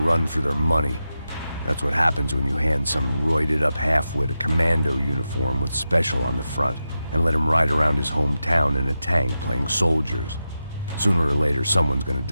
for their money. That's what happens when you hand some roided-up halfwit a commando uniform with special on the front and let him ride around his hometown in a tank playing soldiers. Sooner or later, someone's gonna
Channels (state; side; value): inverted; both; correlation -0.90